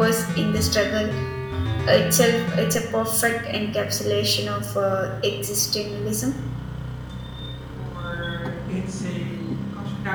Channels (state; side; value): identical; both; correlation 1.00